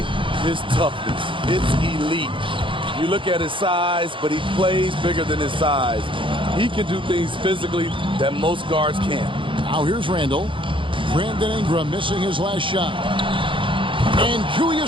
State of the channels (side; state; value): left; late; 0.25 ms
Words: his toughness. It's elite. You look at his size, but he plays bigger than his size. He can do things physically that most guards can't. Now here's Randall. Brandon Ingram missing his last shot. And